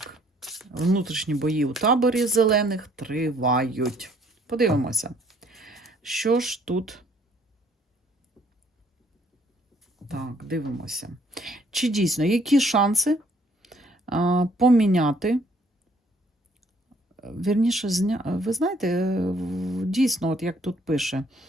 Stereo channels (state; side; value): normal; both; correlation 0.63